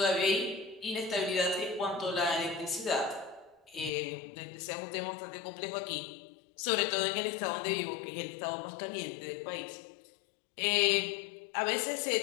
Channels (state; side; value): drops out; right; at 3.9 s